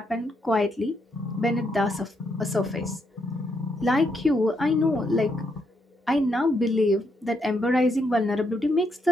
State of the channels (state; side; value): normal; both; correlation 0.77